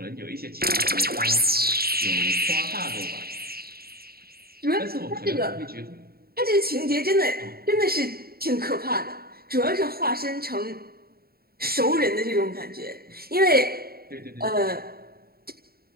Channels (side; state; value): left; late; 0.45 ms